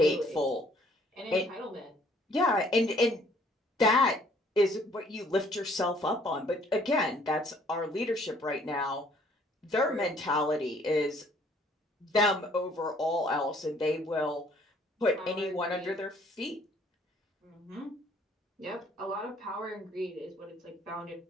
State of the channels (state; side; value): normal; both; correlation 0.61